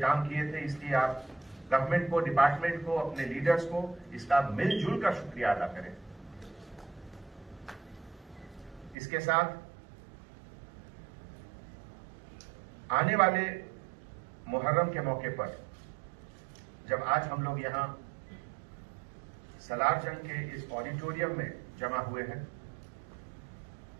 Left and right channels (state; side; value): drops out; left; at 9.0 s